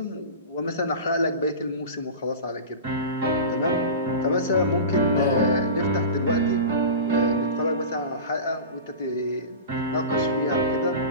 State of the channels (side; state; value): both; inverted; correlation -0.31